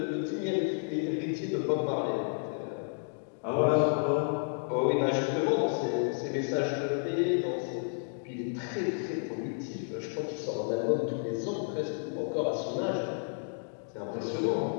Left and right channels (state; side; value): silent; right; digital silence